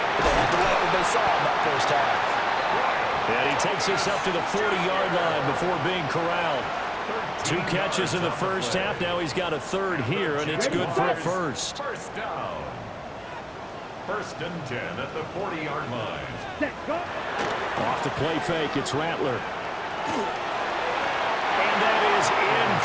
but they had to like what they saw in that first half. And he takes us up to the 40-yard line before being corralled. 2 catches in the first half. Now he's got a 3rd here, and it's good for a first. First down. 1st and 10 at the 40-yard line. Set, go. Off the play fake, it's Rattler. And that is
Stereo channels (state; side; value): identical; both; correlation 1.00